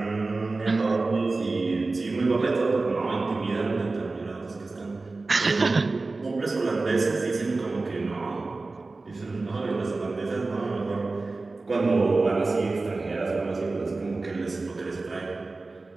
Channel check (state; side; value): quieter; left; 3.5 dB